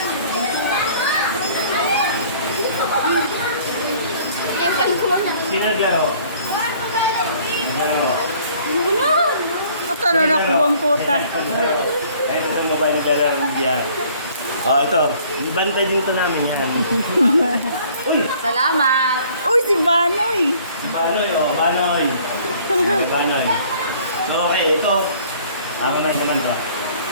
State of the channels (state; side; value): inverted; both; correlation -0.56